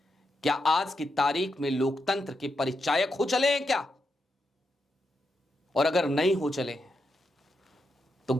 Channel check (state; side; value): normal; both; correlation 0.84